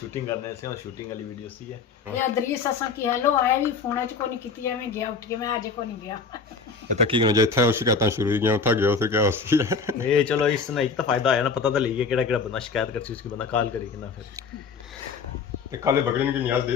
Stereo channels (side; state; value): right; quieter; 5.0 dB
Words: करने से शूटिंग वाली वीडियो सी है ये इदरीस असा की हेलो आया भी फोन च को नहीं कीती मैं गया उठ के मैं आज को नहीं गया ये तो की करना जे था शिकायतां शुरू ही गया उठा गया फिर क्या होसी है ये चलो इससे एक तो फायदा आया ना पता तो लगी केड़ा बंदा शिकायत करसी उसकी बंदा कॉल करी कि ना फिर ते काले बकरीन की न्याज